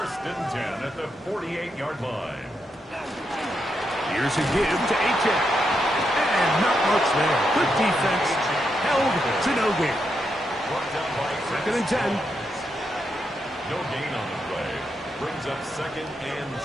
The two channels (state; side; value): normal; both; correlation 0.82